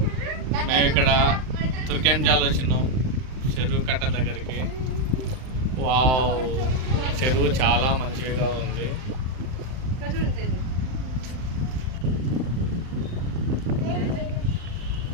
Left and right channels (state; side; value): late; left; 39 ms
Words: మేము ఇక్కడ తుర్కెంజాల్ వచ్చినాం చెరువు కట్ట దగ్గరికి. వావ్, చెరువు చాలా మంచిగా ఉంది.